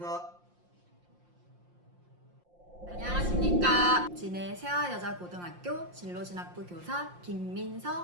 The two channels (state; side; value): late; left; 5.7 ms